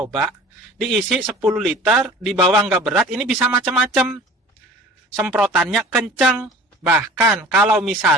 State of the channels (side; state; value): both; normal; correlation 0.44